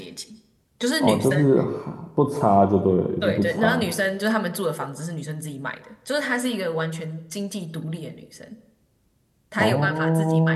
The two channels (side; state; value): both; identical; correlation 1.00